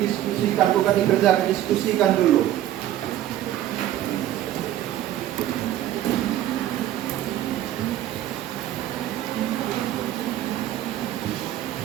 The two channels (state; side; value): quieter; left; 12.8 dB